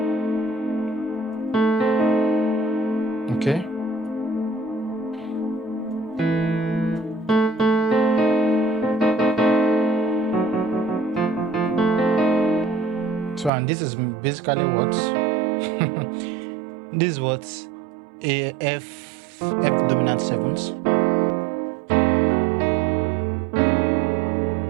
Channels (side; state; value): left; drops out; at 13.5 s